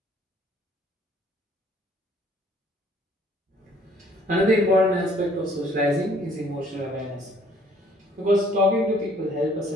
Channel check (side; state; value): both; normal; correlation 0.60